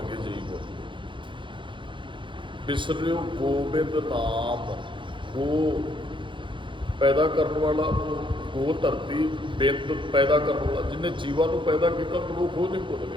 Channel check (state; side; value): late; left; 0.24 ms